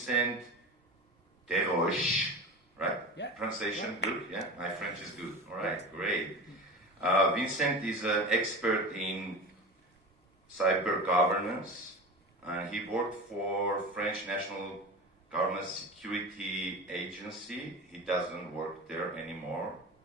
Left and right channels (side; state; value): both; normal; correlation 0.30